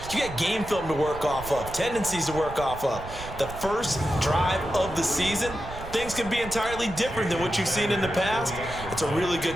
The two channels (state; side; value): noise; right; rumble, 12 dB below the sound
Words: you got game film to work off of, tendencies to work off of. The first drive of the season, things can be entirely different than what you've seen in the past. It's a really